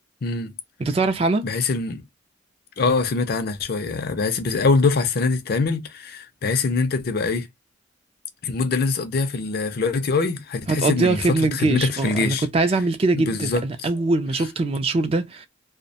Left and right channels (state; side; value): normal; both; correlation 0.46